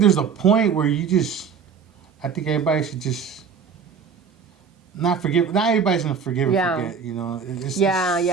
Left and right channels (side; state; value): left; quieter; 6.3 dB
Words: there's a point where I think everybody should just not forgive. Not everybody's gonna forgive and forget. You know.